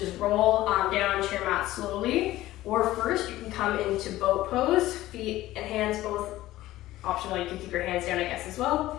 roll down onto your mat slowly, or first you can come into boat pose, feet and hands both optional. You can keep your hands down, I guess, as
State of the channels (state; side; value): quieter; right; 15.9 dB